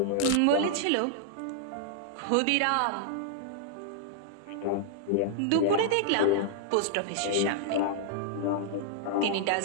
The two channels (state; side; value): different; both; correlation -0.01